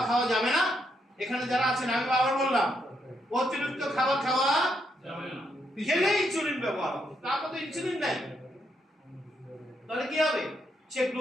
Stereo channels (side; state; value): both; normal; correlation 0.78